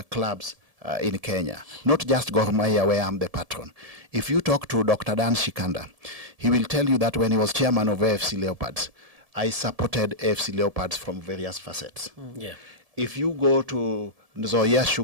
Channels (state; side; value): late; left; 1.7 ms